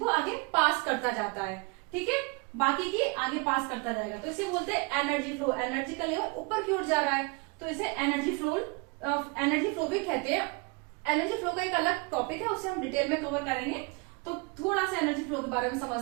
आगे पास करता जाता है। ठीक है, बाकी की आगे पास करता जाएगा, तो इसे बोलते हैं एनर्जी फ्लो। एनर्जी का लेवल ऊपर की ओर जा रहा है, तो इसे एनर्जी फ्लो भी कहते हैं। एनर्जी फ्लो का एक अलग टॉपिक है, उसे हम डिटेल में कवर करेंगे। तो थोड़ा सा एनर्जी फ्लो के बारे में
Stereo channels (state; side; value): quieter; left; 29.8 dB